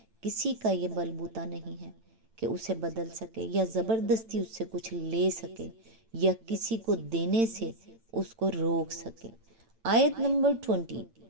کسی کا یہ بلبوتا نہیں ہے کہ اسے بدل سکے یا زبردستی اس سے کچھ لے سکے یا کسی کو دینے سے اس کو روک سکے۔ آیت نمبر 20،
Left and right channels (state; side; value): late; left; 8.9 ms